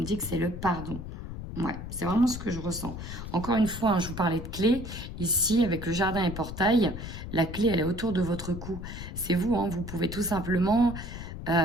dit que c'est le pardon. Ouais, c'est vraiment ce que je ressens. Encore une fois, je vous parlais de clé. Ici, avec le jardin et portail, la clé, elle est autour de votre cou. C'est vous, vous pouvez tout simplement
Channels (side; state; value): left; noise; rumble, 8 dB below the sound